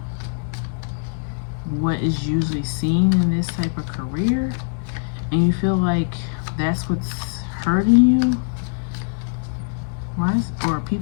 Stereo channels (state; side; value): silent; right; digital silence